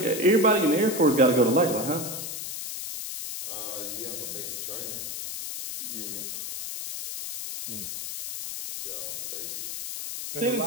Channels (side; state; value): left; noise; hiss, 6 dB below the sound